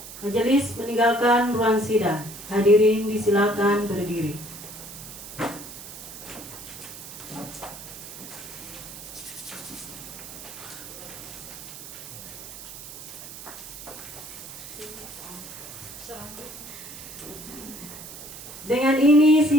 majelis meninggalkan ruang sidang. Hadirin disilakan berdiri. Dengan ini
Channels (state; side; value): noise; right; hiss, 13 dB below the sound